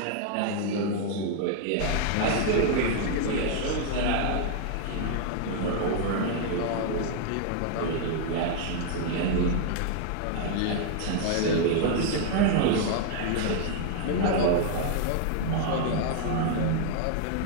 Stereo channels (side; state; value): both; different; correlation 0.00